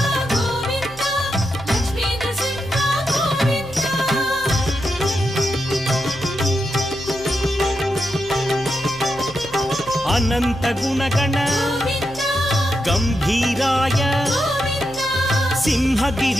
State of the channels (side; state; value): left; noise; hum, 18 dB below the sound